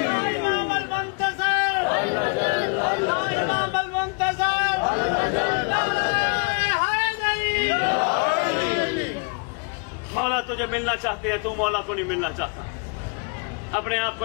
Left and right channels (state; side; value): quieter; right; 35.5 dB